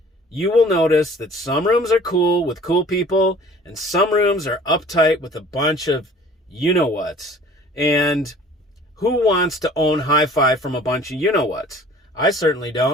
you will notice that some rooms are cool with cool people and some rooms are uptight with a bunch of you-know-whats. And who wants to own hi-fi from a bunch of you-know-whats? I certainly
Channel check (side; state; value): both; normal; correlation 0.49